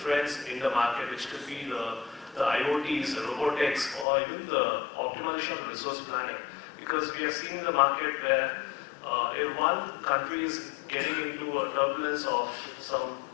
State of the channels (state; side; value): drops out; right; at 4.0 s